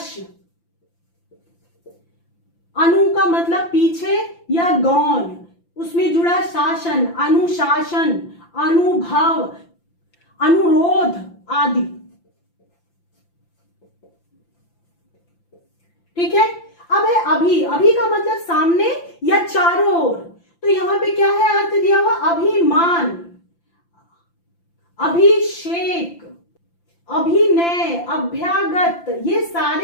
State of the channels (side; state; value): right; late; 5.9 ms